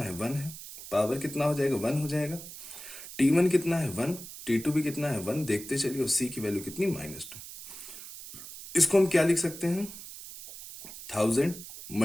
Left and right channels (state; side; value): noise; right; hiss, 13 dB below the sound